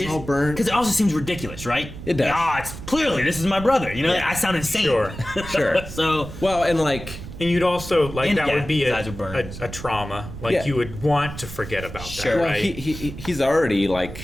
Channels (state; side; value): noise; right; rumble, 11 dB below the sound